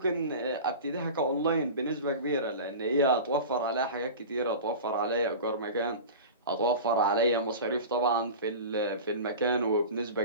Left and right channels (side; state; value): both; inverted; correlation -0.33